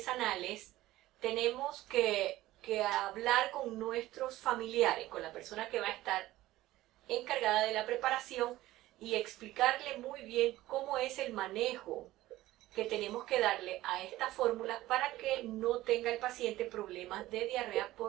tenemos que hablar con nuestros familiares, con la persona que va a estar encargada de la preparación y explicarle muy bien cómo es el manejo que tenemos que darle a esta fórmula para que no tenga el paciente problemas de diarrea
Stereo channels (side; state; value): left; quieter; 16.3 dB